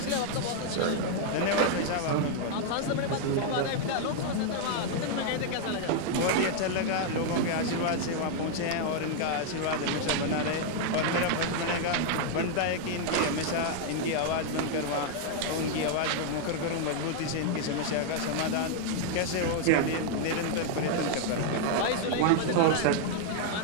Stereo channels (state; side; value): different; both; correlation 0.00